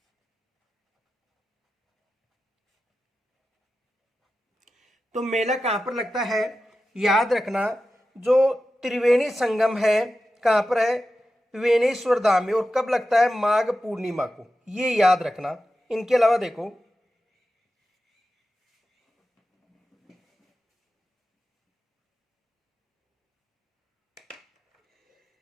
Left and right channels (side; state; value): both; normal; correlation 0.92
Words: तो मेला कहां पर लगता है? याद रखना, जो त्रिवेणी संगम है कहां पर है? वेणेश्वर धाम में। और कब लगता है? माघ पूर्णिमा को। ये याद रखना। इनके अलावा देखो,